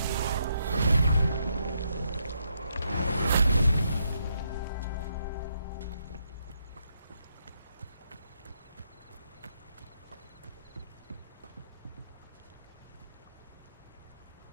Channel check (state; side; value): inverted; both; correlation -0.78